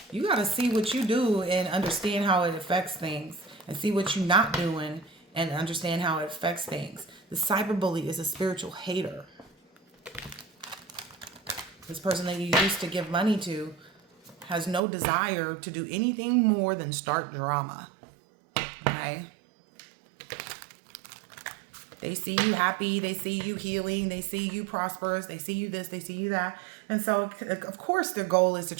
you got to see what you do and understand how it affects things, and see what you're not doing and understand how it affects things. The cyberbully is a spiritual hater. This person that you used to give money to has no desire to do anything more than start drama. Okay? They see you happy, they see you healing, they see you prosperous, they see you this, they see you that. And so, of course, their goal is to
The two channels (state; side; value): drops out; left; at 14.8 s